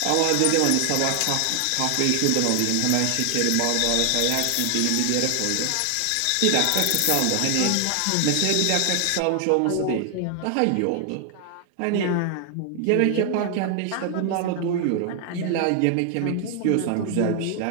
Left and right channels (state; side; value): different; both; correlation 0.00